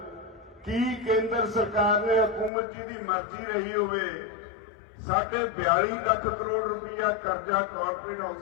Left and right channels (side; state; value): right; drops out; at 2.5 s